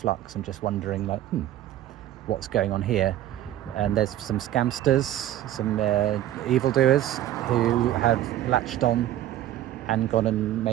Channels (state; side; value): quieter; left; 12.9 dB